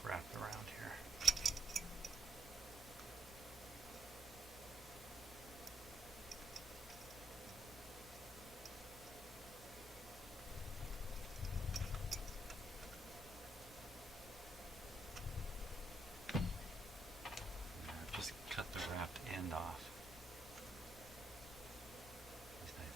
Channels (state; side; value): normal; both; correlation 0.76